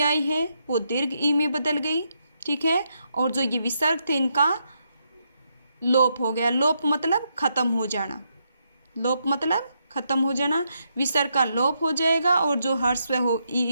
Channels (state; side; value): inverted; both; correlation -0.80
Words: आई है, वो दीर्घ ई में बदल गई, ठीक है। और जो ये विसर्ग थे इनका लोप हो गया। लोप मतलब खत्म हो जाना, लोप मतलब खत्म हो जाना, विसर्ग का लोप हो जाएगा और जो ह्रस्व हो